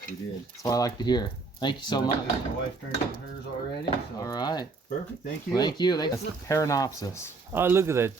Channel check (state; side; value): quieter; left; 4.0 dB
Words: We did. That's what I like to hear. Thank you so much. My wife turned in hers already. So All right. perfect. Thank you. Thank you. That's the Paranopsis. Oh, look at that